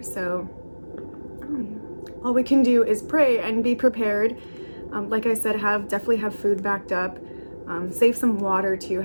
So all we can do is pray and be prepared. Like I said, definitely have food backed up. Save some water too.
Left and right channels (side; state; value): both; inverted; correlation -1.00